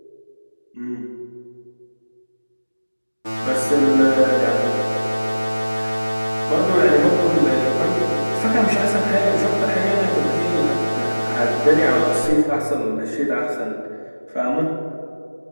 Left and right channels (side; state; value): both; inverted; correlation -1.00